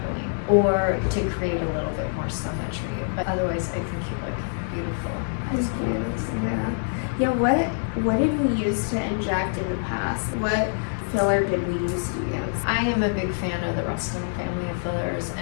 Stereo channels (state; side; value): silent; right; digital silence